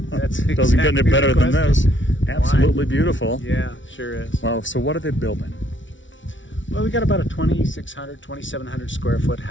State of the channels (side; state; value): right; late; 0.56 ms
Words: exactly Doesn't get any better than this. Absolutely Why? Beautiful. Yeah, sure is. Well, so what are they building? Well, we got about a 2,600, 2,700 square foot